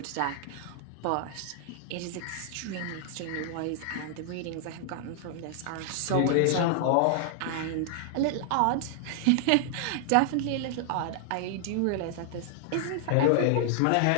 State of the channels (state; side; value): different; both; correlation 0.00